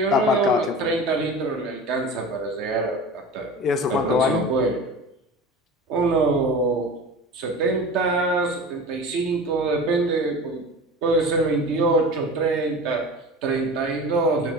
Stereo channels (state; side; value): normal; both; correlation 0.35